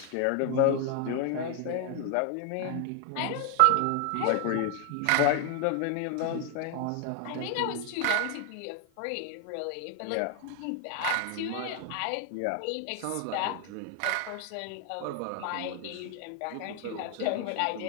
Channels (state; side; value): different; both; correlation 0.00